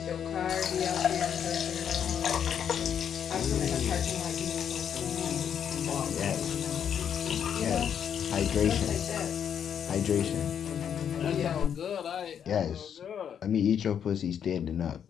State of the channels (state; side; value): quieter; right; 8.4 dB